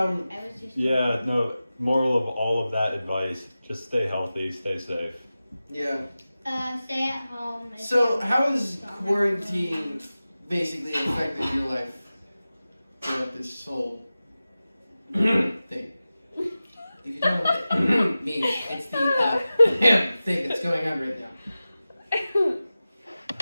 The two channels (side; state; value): both; inverted; correlation -0.95